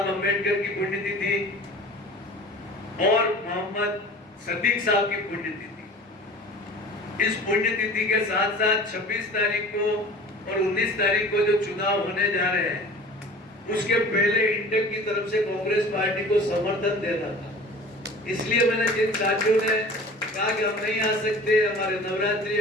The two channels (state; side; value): normal; both; correlation 0.42